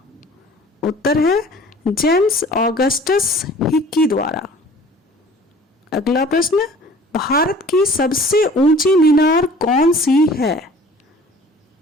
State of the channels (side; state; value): both; normal; correlation 0.49